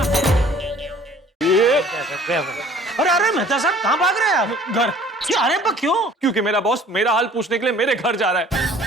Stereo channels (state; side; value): normal; both; correlation 0.52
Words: अरे अरे मेहता साहब कहाँ भाग रहे हैं आप? घर अरे पर क्यों? क्योंकि मेरा बॉस मेरा हाल पूछने के लिए मेरे घर जा रहा है।